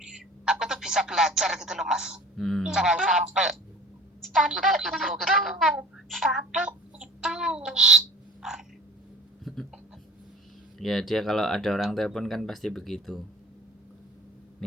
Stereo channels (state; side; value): normal; both; correlation 0.43